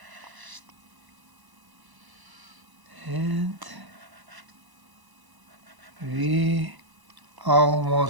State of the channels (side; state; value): left; late; 1.0 ms